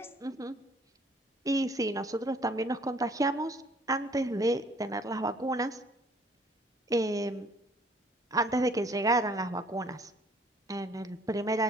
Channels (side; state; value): both; normal; correlation 0.59